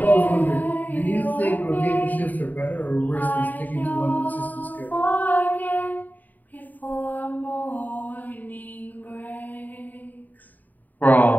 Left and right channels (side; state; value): right; late; 0.084 ms